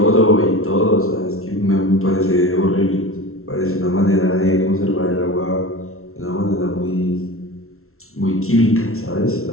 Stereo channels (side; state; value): right; late; 0.62 ms